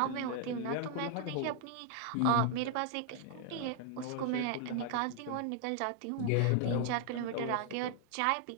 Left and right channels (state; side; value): different; both; correlation 0.00